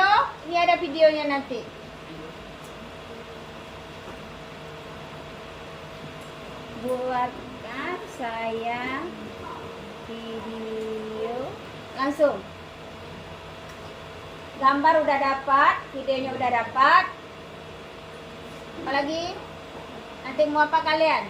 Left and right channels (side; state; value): both; identical; correlation 1.00